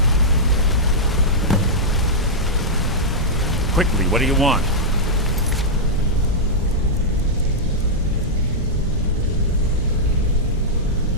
Quickly, what do you want?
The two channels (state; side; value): normal; both; correlation -0.08